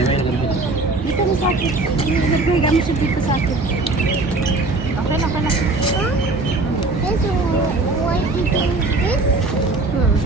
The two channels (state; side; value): quieter; left; 3.3 dB